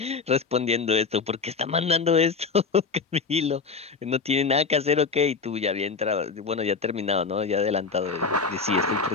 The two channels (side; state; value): right; quieter; 4.9 dB